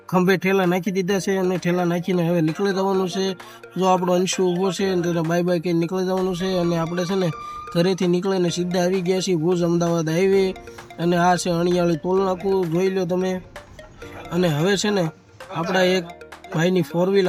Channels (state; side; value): identical; both; correlation 1.00